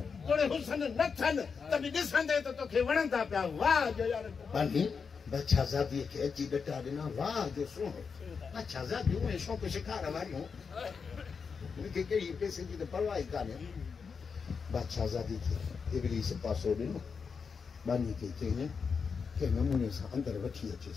तोड़े हुसन न थियनि त बि ॾिसंदे त तोखे वणंदा पिया वाह जो यार बादशाहज़ादी खे अची ॾटा ॾिना वाह जो सुहिणो बादशाहज़ादियूं ऐं शौक़ शिकार वारियूं मूंखे कहिड़ी पैसे जी त परवाह ई कान्हे बादशाहज़ादी खे इब्लीस पासो ॾिनो बानी खे चई कंहिं नमूने सां अंदरि वठी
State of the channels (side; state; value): right; quieter; 5.7 dB